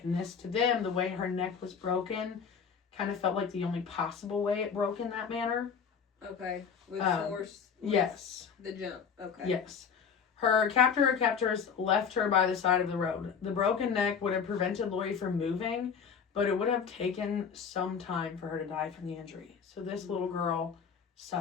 And this, to them, the way her neck was broken, kind of felt like the only possible way it broke in that manner. Okay. With force? Yes. The jump. Okay. Yes. Her captor or captors left her by the side of the road. The broken neck would have prevented Lori from moving, but it would have taken some time for her to die from the injury. So this little girl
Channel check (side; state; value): right; quieter; 6.6 dB